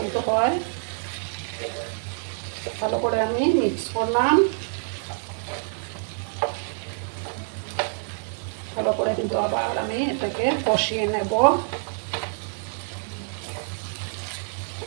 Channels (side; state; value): left; silent; 61 dB below the other